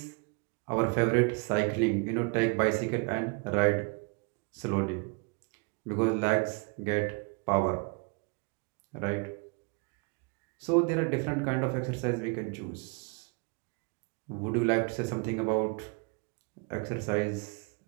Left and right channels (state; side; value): quieter; left; 32.2 dB